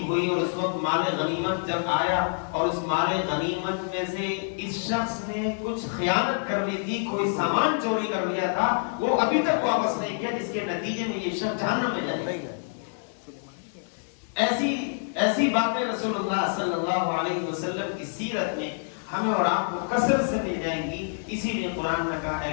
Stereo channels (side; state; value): right; silent; digital silence